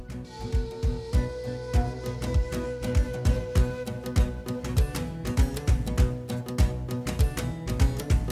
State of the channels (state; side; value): identical; both; correlation 1.00